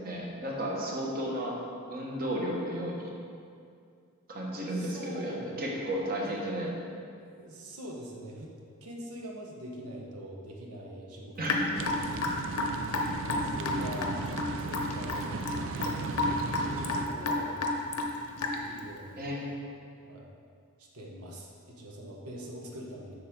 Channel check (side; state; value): both; normal; correlation 0.21